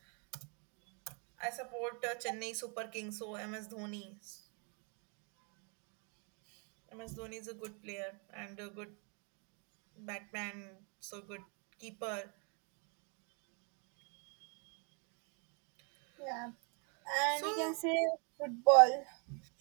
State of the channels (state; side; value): quieter; left; 36.8 dB